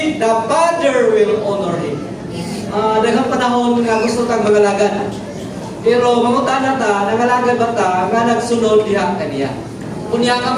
the Father will honor him. Daghang panahon nga gusto tang mangalagad. Pero mangutana ta, nangalagad ba ta nga nagsunod diha kaniya. Kunya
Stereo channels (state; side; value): identical; both; correlation 1.00